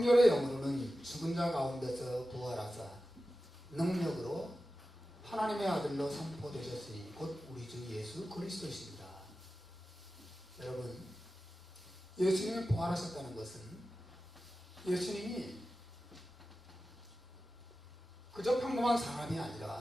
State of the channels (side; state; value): both; normal; correlation 0.94